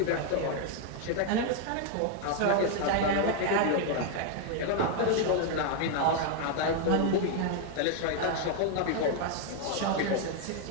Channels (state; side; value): different; both; correlation 0.00